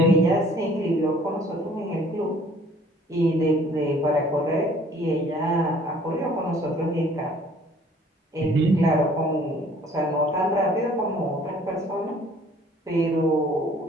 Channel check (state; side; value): normal; both; correlation 0.55